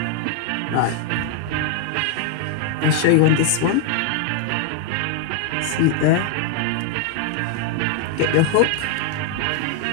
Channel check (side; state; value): both; different; correlation 0.00